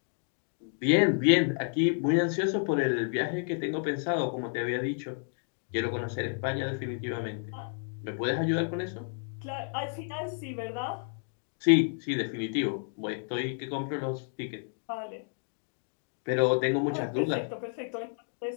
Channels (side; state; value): right; silent; 57 dB below the other